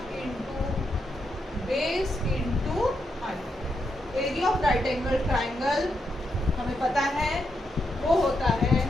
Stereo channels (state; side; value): normal; both; correlation 0.82